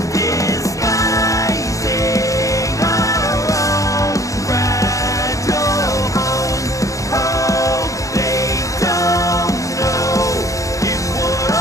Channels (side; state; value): right; late; 0.16 ms